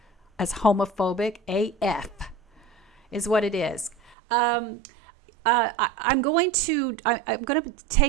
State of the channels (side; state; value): left; drops out; at 4.2 s